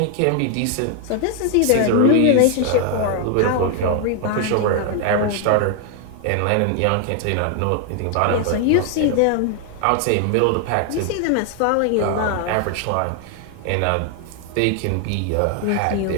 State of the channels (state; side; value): different; both; correlation 0.00